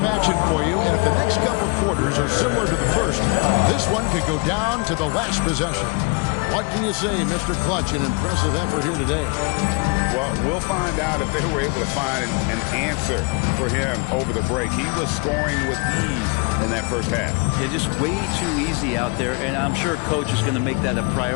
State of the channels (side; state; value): right; quieter; 31.9 dB